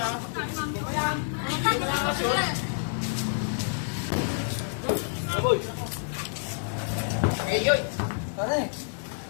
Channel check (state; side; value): silent; right; 59 dB below the other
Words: Aboy! Ngayon. Pare,